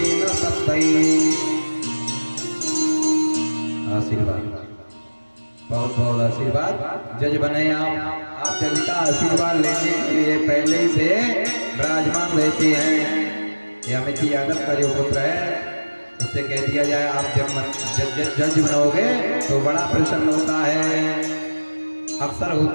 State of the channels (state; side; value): inverted; both; correlation -1.00